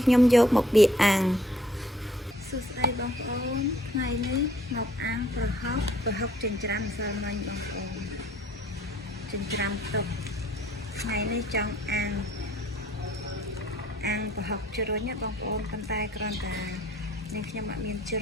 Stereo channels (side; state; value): both; normal; correlation 0.61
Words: ខ្ញុំយកមកបៀកអាំងសួស្តីបងប្អូនថ្ងៃនេះមកអាំងប្រហុកចិញ្ច្រាំម្សិលមិញបងប្អូនចិញ្ច្រាំទុកថ្ងៃនេះចង់អាំងប្រហុកជ្រុញណាបងប្អូនប៉ុន្តែគ្រាន់តែនាងខ្ញុំអត់មានជ្